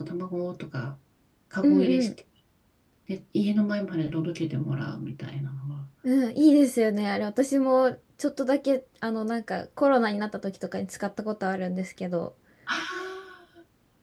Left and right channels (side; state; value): both; identical; correlation 1.00